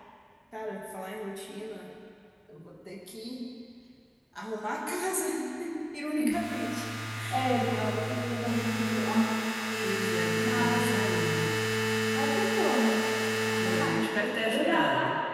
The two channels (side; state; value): both; identical; correlation 1.00